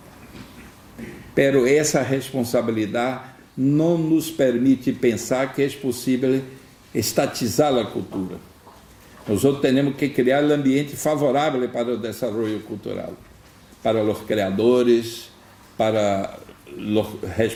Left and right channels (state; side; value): identical; both; correlation 1.00